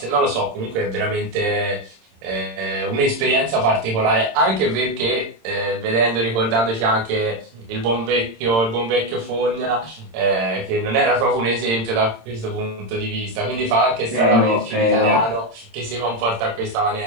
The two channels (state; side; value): late; left; 26 ms